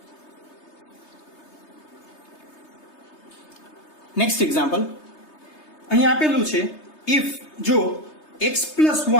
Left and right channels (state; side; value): late; right; 3.3 ms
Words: નેક્સ્ટ એક્ઝામ્પલ અહીં આપેલું છે ઇફ જો x +